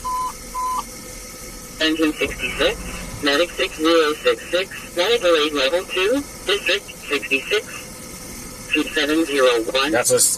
Engine 66, Medic 6066, Medical 8 Level 2, District 66, 2701. That's a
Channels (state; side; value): identical; both; correlation 1.00